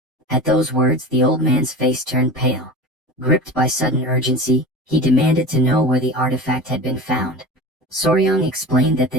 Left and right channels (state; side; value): normal; both; correlation 0.31